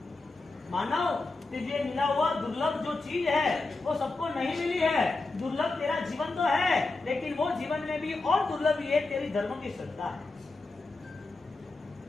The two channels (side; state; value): right; quieter; 3.4 dB